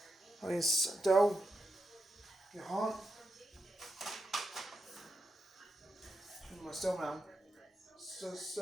stove get hot. Turn my stove on.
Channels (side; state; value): both; normal; correlation 0.85